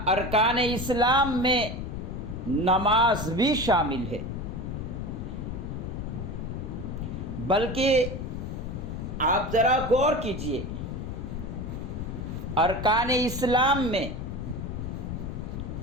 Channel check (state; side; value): noise; left; rumble, 5 dB below the sound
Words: ارکان اسلام میں نماز بھی شامل ہے، بلکہ آپ ذرا غور کیجئے، ارکان اسلام میں